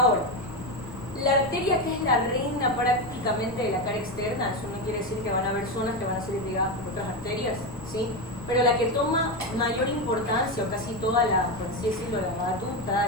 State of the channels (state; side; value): noise; left; rumble, 18 dB below the sound